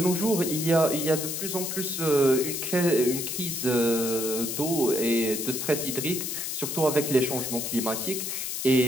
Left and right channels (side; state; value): left; noise; hiss, 4 dB below the sound